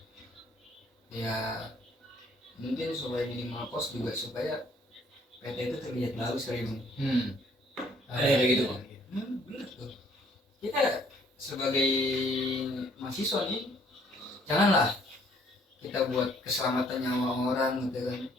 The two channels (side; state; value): both; normal; correlation 0.62